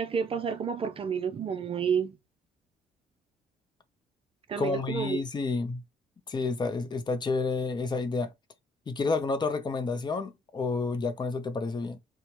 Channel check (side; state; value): both; normal; correlation 0.64